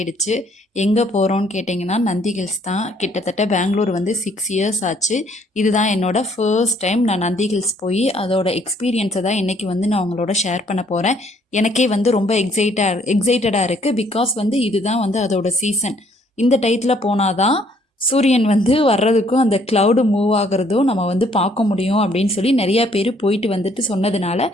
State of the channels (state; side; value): normal; both; correlation 0.64